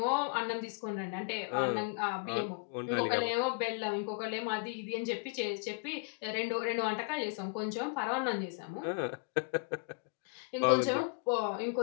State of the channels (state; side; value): quieter; right; 32.8 dB